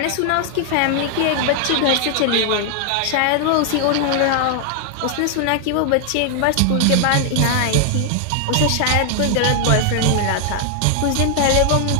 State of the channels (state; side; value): different; both; correlation 0.00